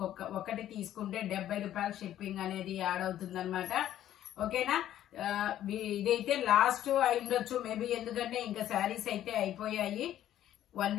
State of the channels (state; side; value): quieter; right; 12.0 dB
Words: ఒకటి తీసుకుంటే 70 రూపాయలు షిప్పింగ్ అనేది యాడ్ అవుతుంది అనమాట. ఓకేనా, ఇదైతే లాస్ట్ అయిండొచ్చు మేబీ, ఎందుకంటే ఇంకా శారీస్ అయితే అయిపోయాయి. 1